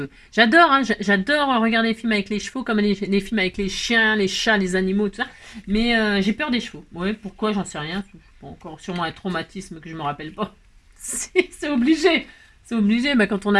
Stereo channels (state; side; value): identical; both; correlation 1.00